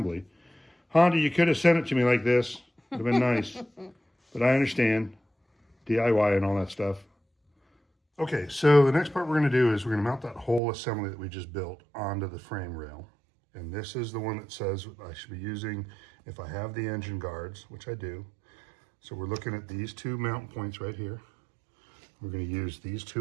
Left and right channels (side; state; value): left; drops out; at 10.6 s